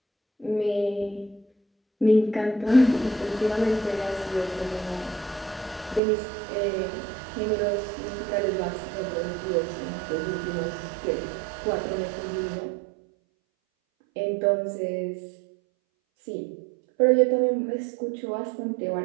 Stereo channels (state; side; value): drops out; left; at 6.0 s